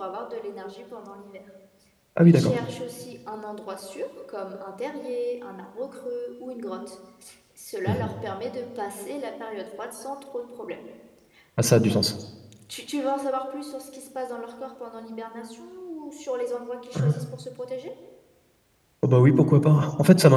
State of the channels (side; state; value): both; identical; correlation 1.00